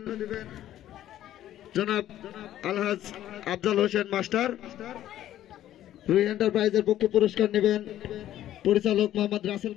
জনাব আলহাজ আফজাল হোসেন মাস্টার। রুহি এন্টারপ্রাইজের পক্ষে পুরস্কার নেবেন পরিচালক মোহাম্মদ রাসেল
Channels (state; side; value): quieter; right; 12.6 dB